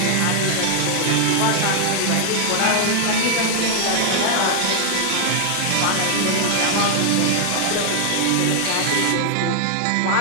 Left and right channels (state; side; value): different; both; correlation 0.00